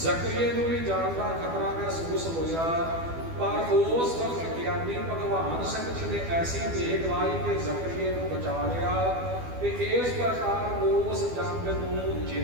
ਨੂੰ ਵੀ ਜਾਨ ਦਾ ਖਤਰਾ ਮਹਿਸੂਸ ਹੋਇਆ, ਪਰ ਉਸ ਵਕਤ ਗਿਆਨੀ ਭਗਵਾਨ ਸਿੰਘ ਜੀ ਨੇ ਐਸੀ ਦੇਗਵਾਈ ਕਿ ਜ਼ਕਰੀਆ ਨੂੰ ਬਚਾ ਲਿਆ ਤੇ ਇਸ ਪ੍ਰਕਾਰ ਉਸ ਜੰਗ ਨੂੰ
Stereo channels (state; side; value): late; left; 12 ms